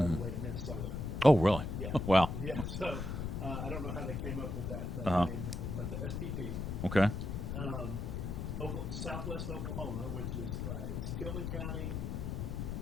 the way to Minnesota. Oh, really? Yeah. Wow. Yeah. So I don't know how they came up with that name, but the SPP. Okay. Southwest Oklahoma, which is it's Tillman County,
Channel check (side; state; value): left; noise; rumble, 3 dB below the sound